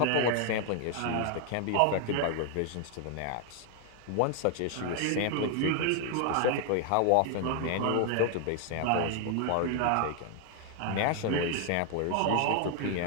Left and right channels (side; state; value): both; different; correlation 0.00